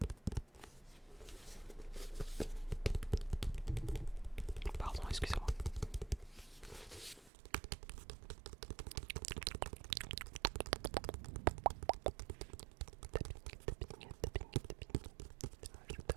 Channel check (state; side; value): drops out; left; at 7.3 s